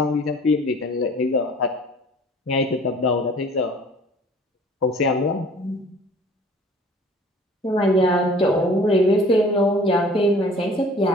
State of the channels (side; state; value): both; normal; correlation 0.49